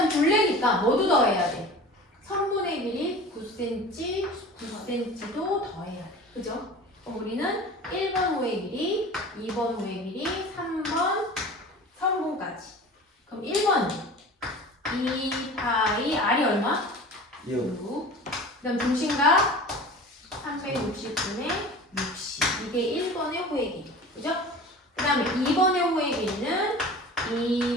둘레니까 뭐도 더해야 돼? 선분의 길이 9cm, 9cm도 더해야 돼. 그죠? 그럼 우리는 1번 호의 길이, 2번 호의 길이, 3번 선분까지. 그럼 1번 2파이 R이 얼마? 6. 그 다음 중심각 360분의 60. 이게 1번의 호의 길이. 그죠? 그 다음에 2번의 호의 길이는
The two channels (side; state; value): both; normal; correlation 0.38